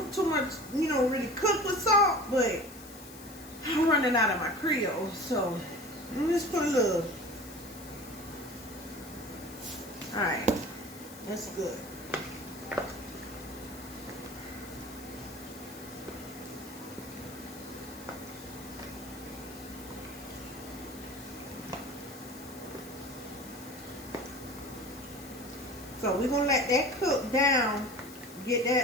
too much, you know, really cook with salt, but I'm running out of my Creole, so let me just put a little. Alright, that's good. So we're gonna let that cook down, get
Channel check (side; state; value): left; noise; hiss, 17 dB below the sound